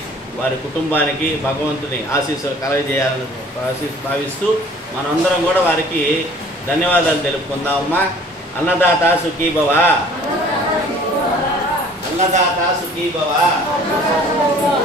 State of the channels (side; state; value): both; normal; correlation 0.51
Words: వారి కుటుంబానికి భగవంతుని ఆశీస్సులు కలగజేయాలని భావిస్తూ మనందరం కూడా వారికి ధన్యవాదాలు తెలుపుకుందామమ్మా. అన్నదాత సుఖీ భవ, అన్నదాత సుఖీ భవ,